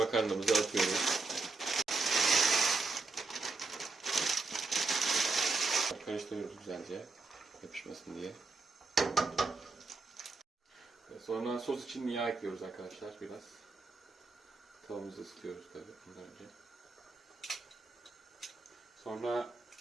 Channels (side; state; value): left; quieter; 3.8 dB